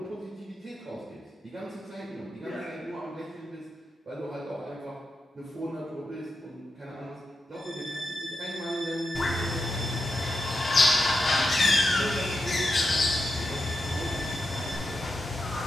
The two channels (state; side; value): normal; both; correlation 0.87